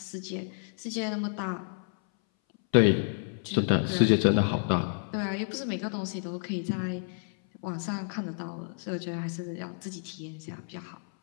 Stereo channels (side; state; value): right; silent; 58 dB below the other